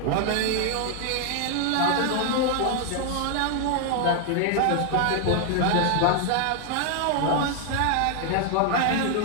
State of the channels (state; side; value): different; both; correlation 0.00